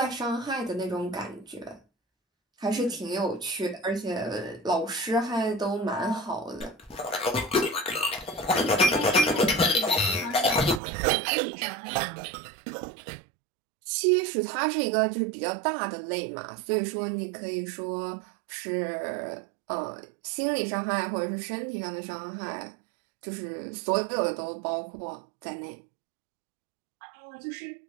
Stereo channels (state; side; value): drops out; left; at 10.8 s